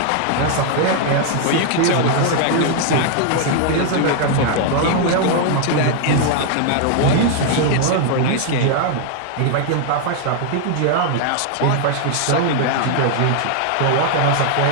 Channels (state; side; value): different; both; correlation 0.00